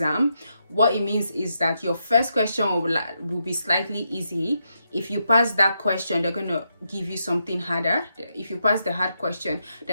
What it means is that your first question will be slightly easy. If you pass that question, they're going to give you something harder. If you pass the hard question,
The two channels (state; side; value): inverted; both; correlation -0.82